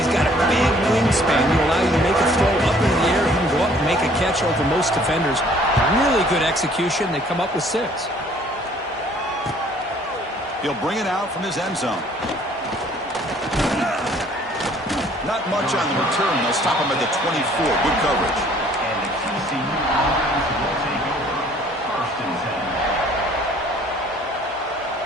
got a big wingspan to allow you to make a throw up into the air. He can go up and make a catch over most defenders. Really good execution. They come up with 6. He'll bring it out from his end zone. Not much on the return. They'll stop him at the 24. Good coverage.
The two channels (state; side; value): normal; both; correlation 0.57